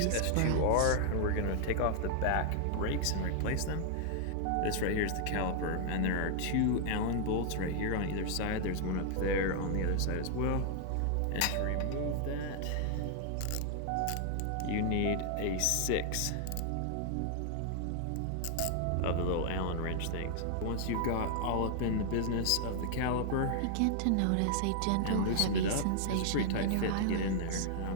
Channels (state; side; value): different; both; correlation -0.01